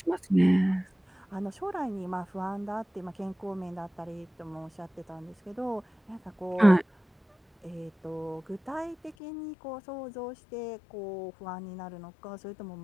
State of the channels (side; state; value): right; drops out; at 9.2 s